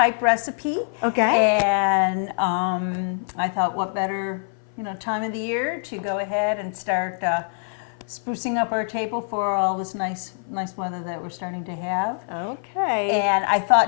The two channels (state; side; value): silent; right; 56 dB below the other